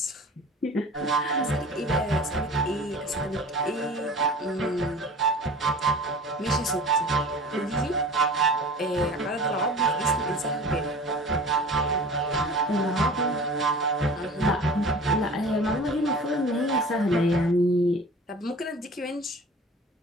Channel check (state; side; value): normal; both; correlation 0.41